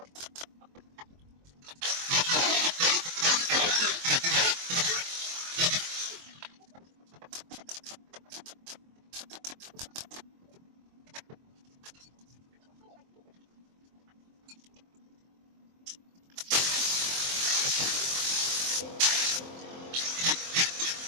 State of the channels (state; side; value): late; left; 23 ms